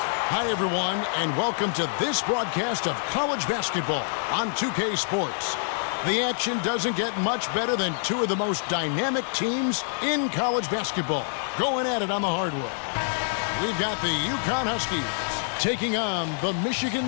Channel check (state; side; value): silent; right; digital silence